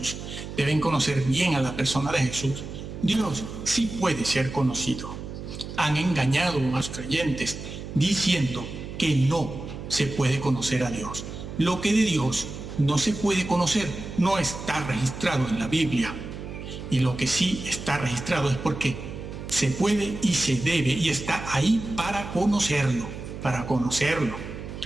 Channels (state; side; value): noise; right; hum, 9 dB below the sound